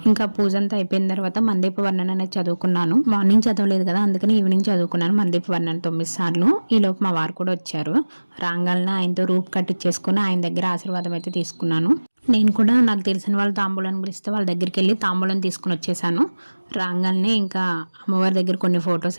ఇంకా పూజ అంతా అయిపోయిన తర్వాత మందీప వర్ణన అనేది చదువుకున్నాను. మార్నింగ్ చదవలేదు కదా, అందుకని ఈవినింగ్ చదువుకున్నాను మందీప వర్ణన 9 సార్లు. ఈలోపు మా వారు కూడా వచ్చారు. రాంగాలన ఆయనతో రూప్ కట్టించేసుకుని ఆయన దగ్గర ఆశీర్వాదం అయితే తీసుకున్నాను. నేను కూడా నాకు తెలిసిన వాళ్ళు తాంబూలాన్ని పిలిస్తే వాళ్ళ దగ్గరికి వెళ్ళి తాంబూలం తీసుకుని వచ్చేసాను. రాగానే ఇంకా అమ్మవారి దగ్గర కొన్ని ఫొటోస్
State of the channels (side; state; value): both; inverted; correlation -1.00